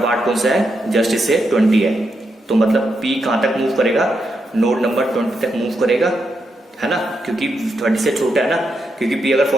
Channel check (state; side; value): normal; both; correlation 0.83